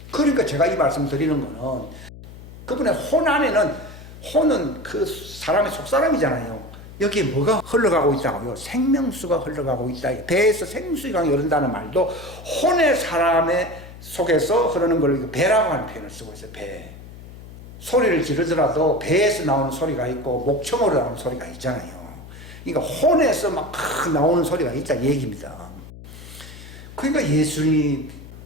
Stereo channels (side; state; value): left; noise; hum, 16 dB below the sound